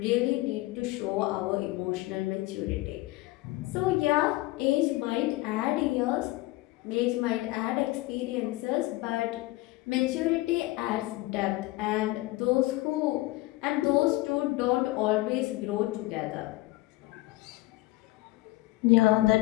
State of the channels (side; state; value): right; quieter; 19.5 dB